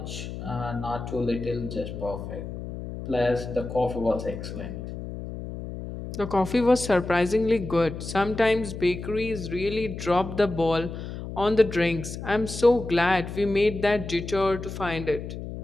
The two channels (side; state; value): left; noise; hum, 8 dB below the sound